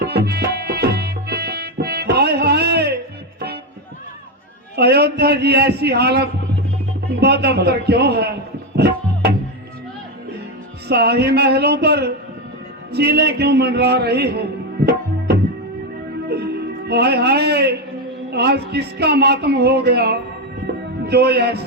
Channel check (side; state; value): both; normal; correlation 0.09